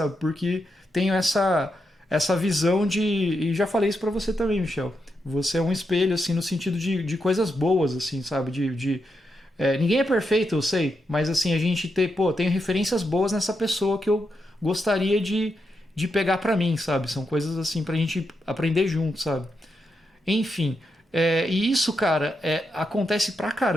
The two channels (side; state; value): both; normal; correlation 0.84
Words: Porque tenho essa visão e já falei isso pra você também, Michel. Você é um espelho, assim, no sentido de coisas boas, assim, sabe? Ninguém é perfeito, eu sei, mas assim, a gente tem referências boas nessa pessoa que eu gostaria de pegar pra mim, sabe? São coisas assim pra gente aprender junto, sabe? Enfim, E isso, cara, acontece pra